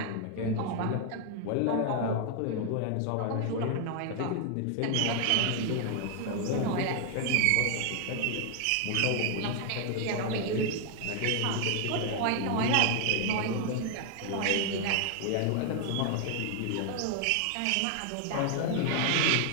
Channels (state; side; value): different; both; correlation 0.00